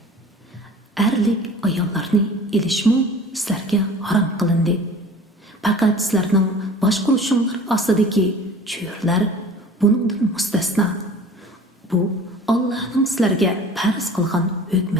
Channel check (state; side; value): normal; both; correlation 0.44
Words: Erlik ayollarni elishmu sizlarga harom qilindi. Faqat sizlarning boshqaruvinglar ostidagi cho'rlar buningdan mustasno. Bu Allohning sizlarga farz qilgan